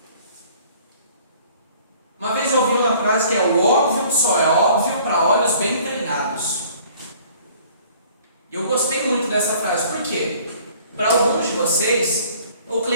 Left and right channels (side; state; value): both; inverted; correlation -0.54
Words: Uma vez eu ouvi uma frase que é: o óbvio só é óbvio para olhos bem treinados. E eu gostei muito dessa frase, por quê? Para alguns de vocês, o